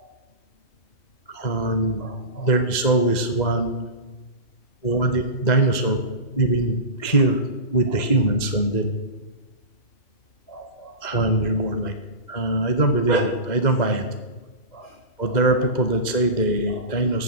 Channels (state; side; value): late; right; 2.1 ms